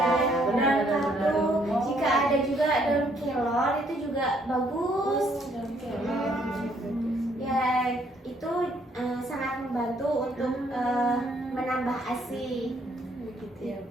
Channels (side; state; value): both; normal; correlation 0.67